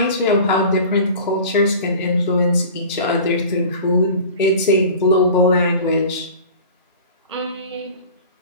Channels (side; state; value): both; inverted; correlation -0.39